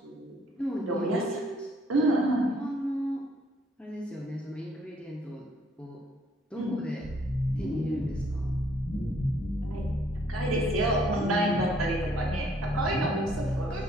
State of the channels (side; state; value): both; normal; correlation 0.65